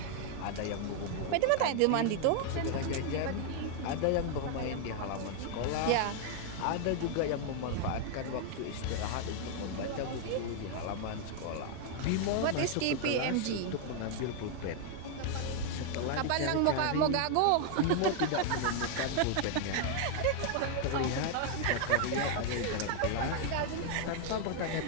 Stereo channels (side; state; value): both; different; correlation 0.00